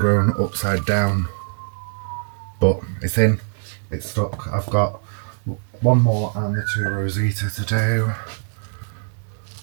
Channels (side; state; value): left; silent; digital silence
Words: upside down, but it's in. It's stuck. I've got one more and the 2 Rosita to do.